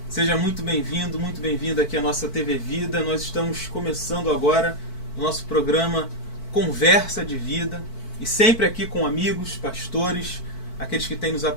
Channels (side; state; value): right; late; 4.5 ms